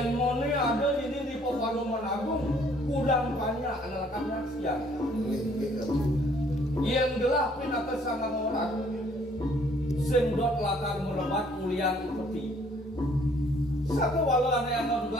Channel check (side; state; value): both; normal; correlation 0.61